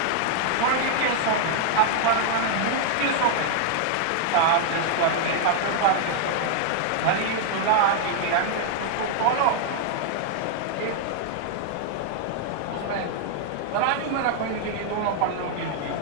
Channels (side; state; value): both; different; correlation 0.00